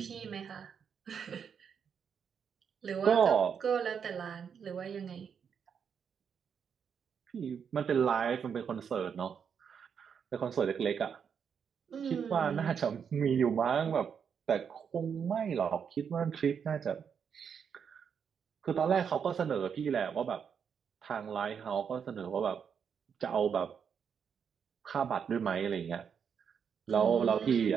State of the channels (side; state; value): left; quieter; 7.1 dB